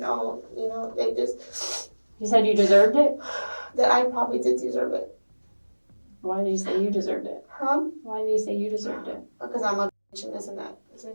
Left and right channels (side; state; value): both; inverted; correlation -1.00